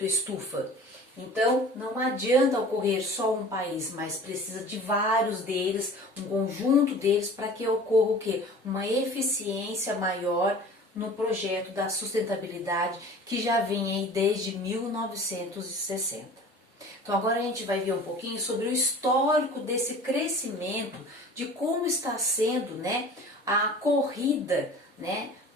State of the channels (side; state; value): both; normal; correlation 0.43